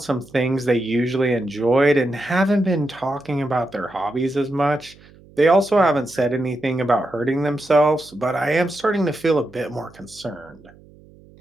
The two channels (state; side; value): noise; right; hum, 25 dB below the sound